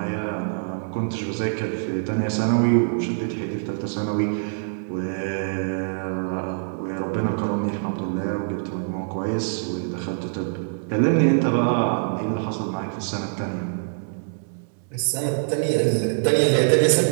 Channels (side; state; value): left; silent; digital silence